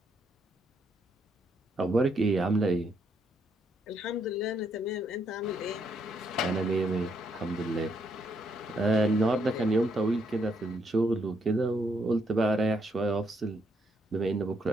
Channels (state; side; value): normal; both; correlation 0.75